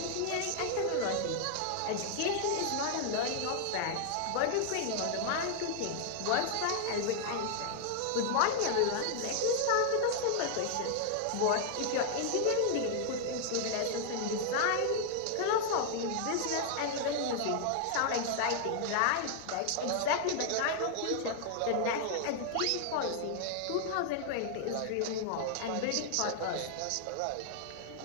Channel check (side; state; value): both; different; correlation 0.00